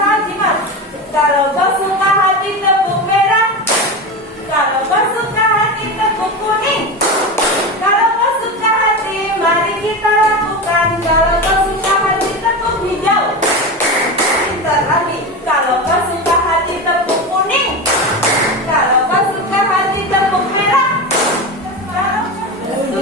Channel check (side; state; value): both; normal; correlation 0.22